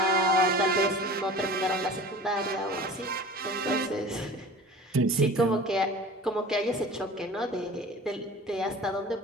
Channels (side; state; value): both; normal; correlation 0.40